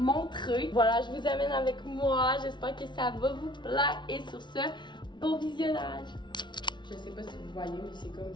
Voilà, je vous amène avec moi. J'espère que ça va vous plaire. Et sur ce, bon visionnage! Je sais pas si vous voyez, mais c'est comme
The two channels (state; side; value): late; right; 0.22 ms